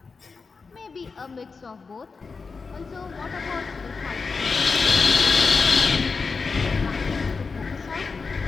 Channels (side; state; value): right; quieter; 4.7 dB